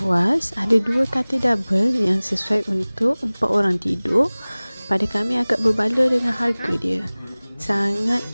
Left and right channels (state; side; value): inverted; both; correlation -1.00